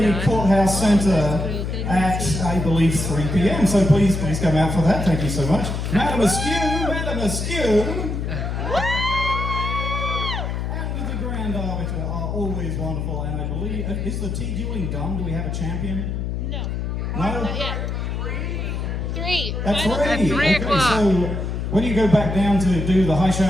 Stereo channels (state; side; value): noise; left; hum, 3 dB below the sound